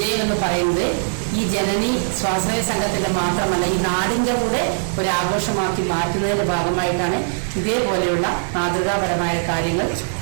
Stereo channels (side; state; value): left; silent; 65 dB below the other